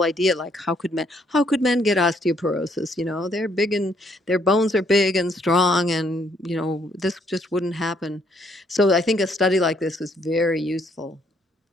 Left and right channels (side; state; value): both; normal; correlation 0.69